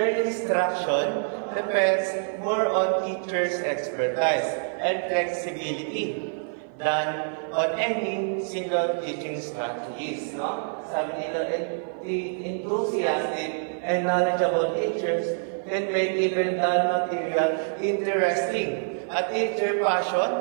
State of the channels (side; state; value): left; silent; 55 dB below the other